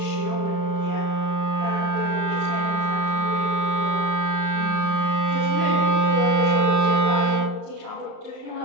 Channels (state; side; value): late; left; 35 ms